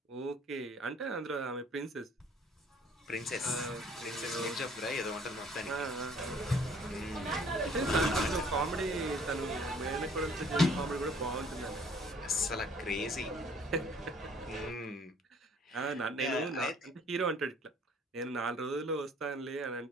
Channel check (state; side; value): normal; both; correlation 0.57